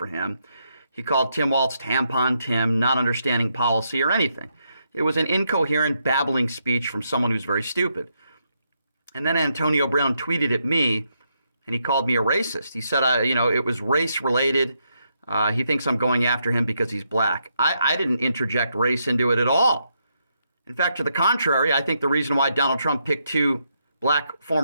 him. He called Tim Walz tampon Tim, not understanding policy or anything. It was an incoherent, babbling speech from someone who's very stupid. And then Antonio Brown tweeted at me, and he called me a racist. He said, it was race related. He thinks I'm going after him because he's black. I didn't interject race into it at all. In fact, to the contrary, I think the reason why Donald Trump picked two black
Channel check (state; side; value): inverted; both; correlation -0.80